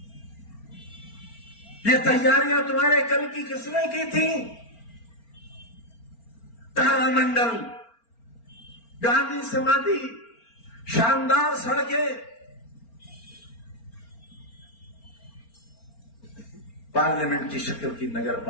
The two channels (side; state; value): right; late; 4.4 ms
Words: ये तैयारियां तुम्हारे कल की किसने की थी? तारामंडल, गांधी समाधि, शानदार सड़कें। पार्लियामेंट की शक्ल की नगर